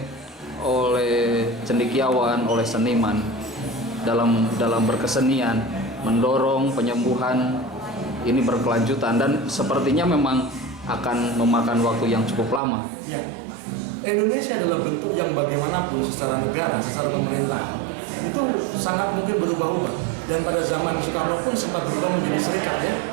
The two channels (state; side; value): drops out; left; at 12.6 s